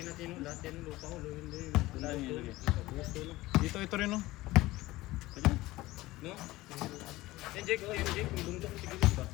natin yun. Lahat yan yung lupa ko. Luhin. Saan yun ilagay? Gusto no? Ito rin no. No? Yan Jake, oh yan Jake. Yung bundok sa gilid ba?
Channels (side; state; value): right; quieter; 18.4 dB